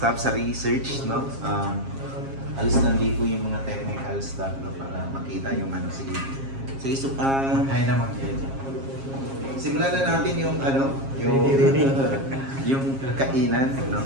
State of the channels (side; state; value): left; late; 7.4 ms